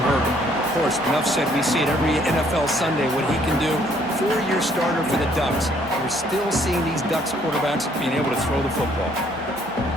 Herbert, of course, enough said, we see it every NFL Sunday what he can do. 4-year starter for the Ducks. We're still seeing these Ducks quarterbacks being able to throw the football.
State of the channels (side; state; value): both; normal; correlation 0.64